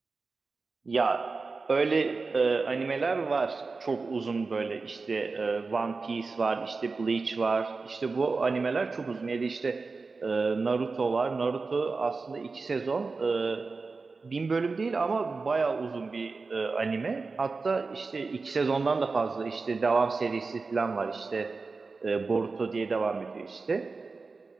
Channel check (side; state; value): left; quieter; 4.1 dB